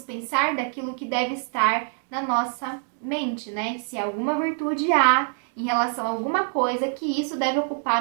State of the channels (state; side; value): silent; left; 62 dB below the other